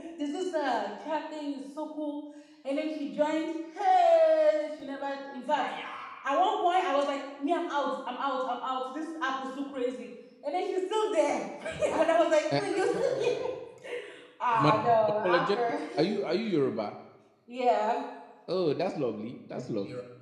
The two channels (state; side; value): identical; both; correlation 1.00